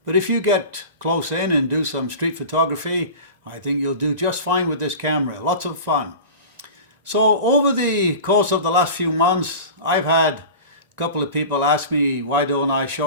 But if you get close in and do some street photography, I think you'll do just fine with this camera. Lots of fun. So over the course of the last few months, I've had a couple of people ask me, why don't I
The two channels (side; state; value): both; inverted; correlation -0.35